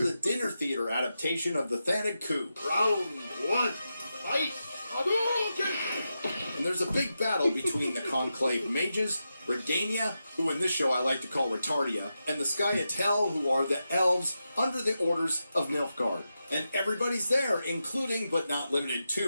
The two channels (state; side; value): inverted; both; correlation -0.89